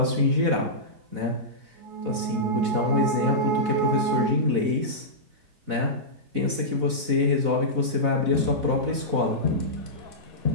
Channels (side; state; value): left; late; 4.0 ms